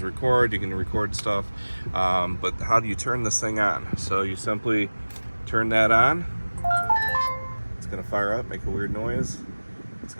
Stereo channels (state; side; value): inverted; both; correlation -1.00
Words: record. You can record stuff. But how do you turn this thing on? So you simply turn that on. It's going to fire up, make a weird noise. It's